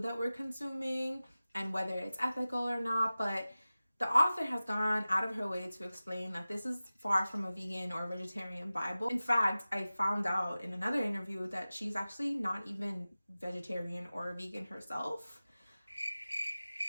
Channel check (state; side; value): inverted; both; correlation -0.97